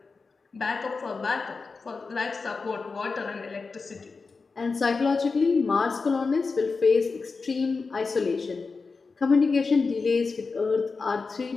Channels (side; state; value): right; quieter; 4.4 dB